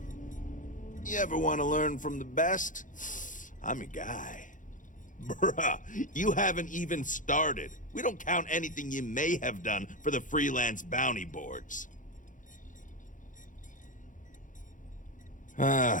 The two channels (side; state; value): right; late; 0.38 ms